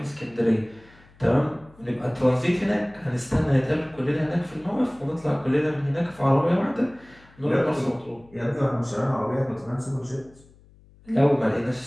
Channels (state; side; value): noise; left; hum, 27 dB below the sound